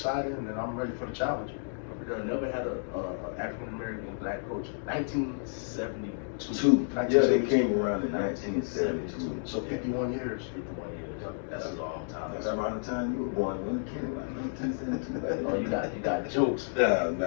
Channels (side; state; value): right; silent; digital silence